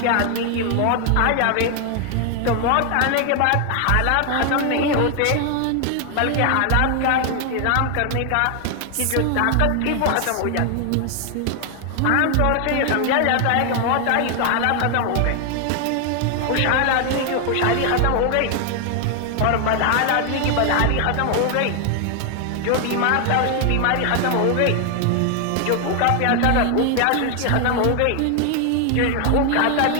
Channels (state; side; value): different; both; correlation 0.00